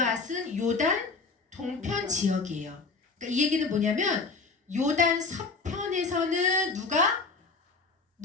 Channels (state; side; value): quieter; right; 4.2 dB